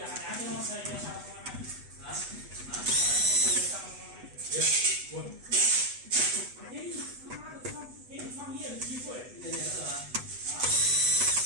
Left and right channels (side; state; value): left; late; 8.1 ms